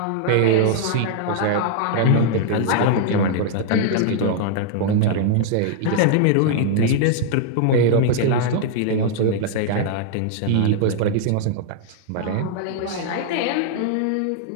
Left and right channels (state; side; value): different; both; correlation -0.01